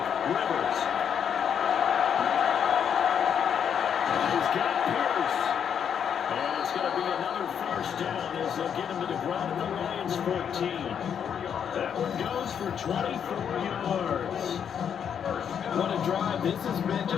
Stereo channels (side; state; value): right; quieter; 8.1 dB